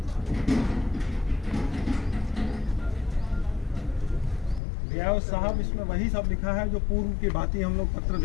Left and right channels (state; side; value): drops out; right; at 4.6 s